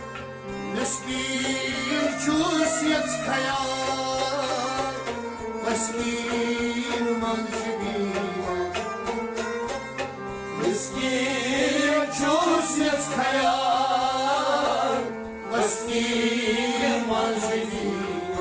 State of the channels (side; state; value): both; identical; correlation 1.00